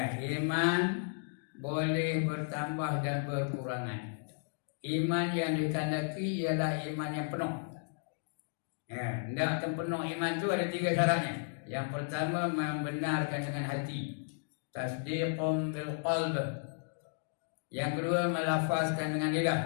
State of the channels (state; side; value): silent; right; digital silence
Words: iman boleh bertambah dan berkurangan. Iman yang ditandai ialah iman yang penuh. Hendak penuh iman itu ada 3 syaratnya. Yang pertama, membenarkan dengan hati. Tasdiqum bil qalb. Yang kedua, melafazkan dengan